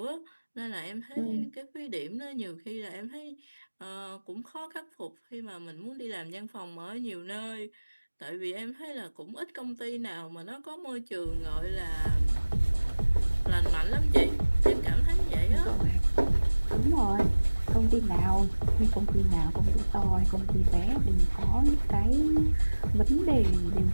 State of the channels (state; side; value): inverted; both; correlation -1.00